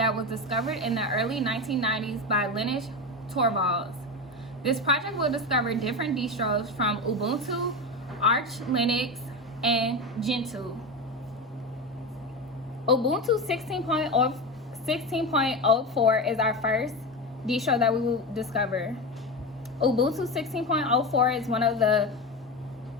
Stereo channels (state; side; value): normal; both; correlation 0.21